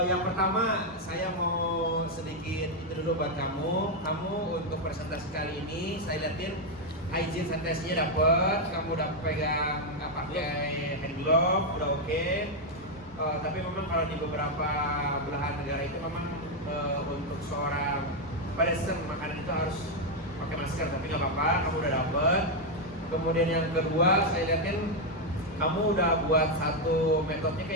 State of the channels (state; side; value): normal; both; correlation 0.02